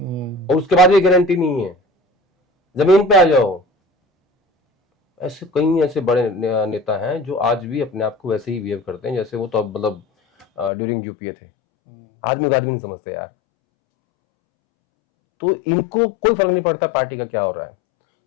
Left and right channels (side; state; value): right; drops out; at 10.7 s